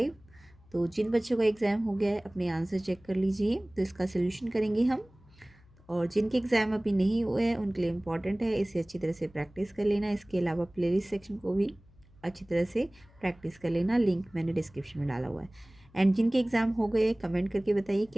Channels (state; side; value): noise; left; hum, 27 dB below the sound